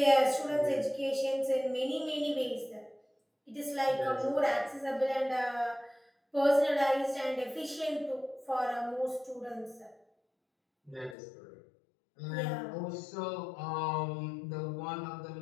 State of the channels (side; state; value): right; drops out; at 11.2 s